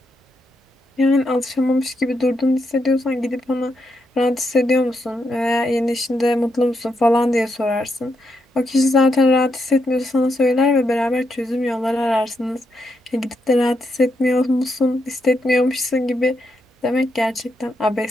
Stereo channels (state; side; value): normal; both; correlation 0.81